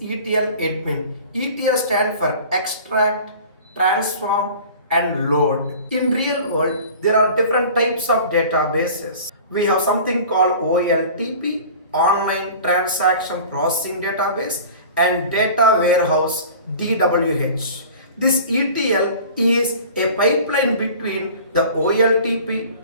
ETL Admin? ETL stands for extract, transform, and load. In real world, there are different types of databases. We have something called OLTP, Online Transaction Processing Database, and Data Warehouse, DWH. This ETL is a pipeline between the OLTP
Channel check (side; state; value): both; inverted; correlation -0.42